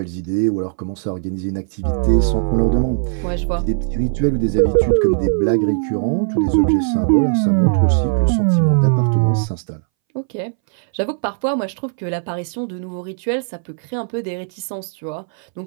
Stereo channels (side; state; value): left; silent; 64 dB below the other